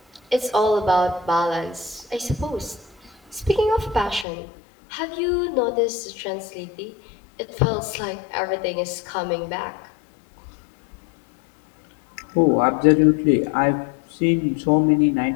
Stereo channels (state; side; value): drops out; right; at 4.2 s